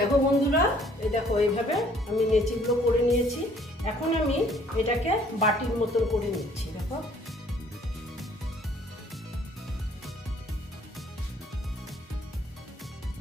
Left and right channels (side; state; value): both; normal; correlation 0.59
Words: বন্ধুরা, এই দেখো এইভাবে আমি নেচিগুলো করে নিয়েছি। এখন আমি এটাকে বাটির মতন করে নিচ্ছি। দেখো,